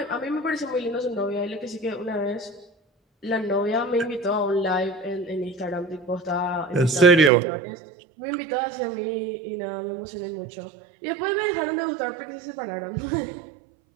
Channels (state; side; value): drops out; left; at 7.3 s